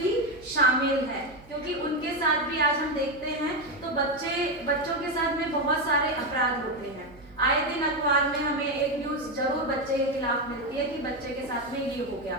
शामिल हैं, क्योंकि उनके साथ भी आज हम देखते हैं तो बच्चों के साथ में बहुत सारे अपराध होते हैं। आए दिन अखबार में हमें एक न्यूज जरूर बच्चे के खिलाफ मिलती है कि बच्चे के साथ में ये हो गया,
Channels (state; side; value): noise; right; hum, 23 dB below the sound